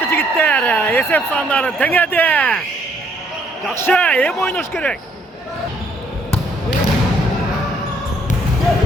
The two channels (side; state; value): both; normal; correlation 0.67